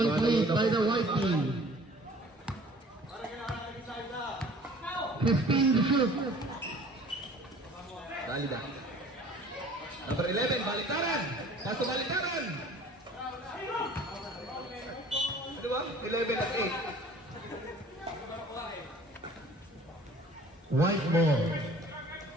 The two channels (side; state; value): both; normal; correlation 0.50